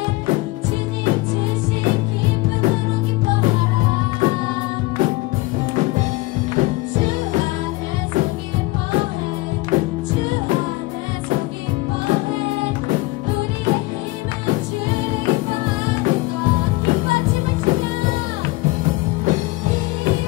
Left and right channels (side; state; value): right; quieter; 21.6 dB